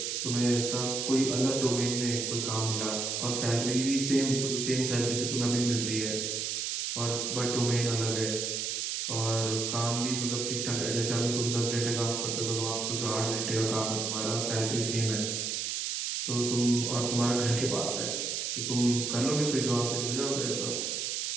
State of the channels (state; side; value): noise; right; hiss, 1 dB below the sound